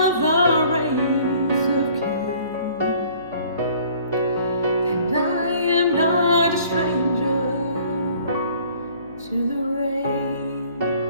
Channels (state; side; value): inverted; both; correlation -0.55